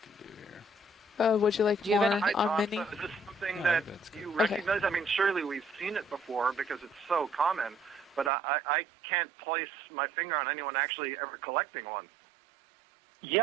do here. Would you like Do you have more any- Hi, on Tom. mini? So is this something No, that that's good. you Okay. recognize? I mean, surely we've seen it before because it's so common, but I can't place my finger on anyone actually ever collecting one.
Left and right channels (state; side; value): drops out; left; at 8.3 s